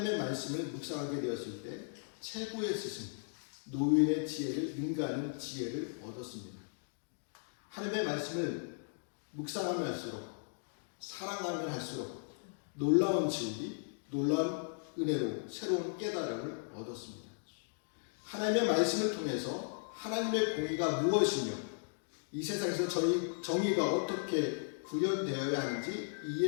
말씀을 묵상하게 되었을 때 최고의 스승, 노인의 지혜를 능가하는 지혜를 얻었습니다. 하나님의 말씀을 묵상하면 할수록, 사랑하면 할수록 놀라운 진리, 놀라운 은혜로 새로운 깨달음을 얻었습니다. 하나님의 말씀을 통해서 하나님의 공의가 무엇이며 이 세상에서 정의가 어떻게 구현되어야 하는지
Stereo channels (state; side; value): silent; right; digital silence